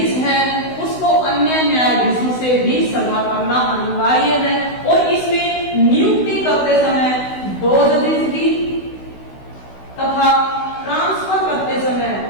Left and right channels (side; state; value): right; late; 16 ms